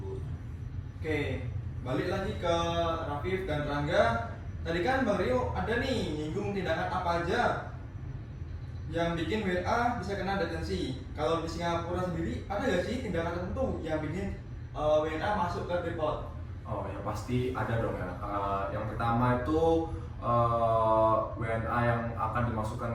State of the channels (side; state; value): both; identical; correlation 1.00